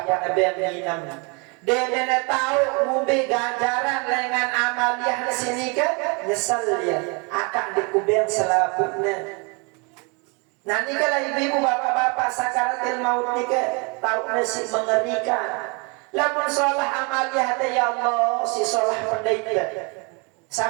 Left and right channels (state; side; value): quieter; left; 32.0 dB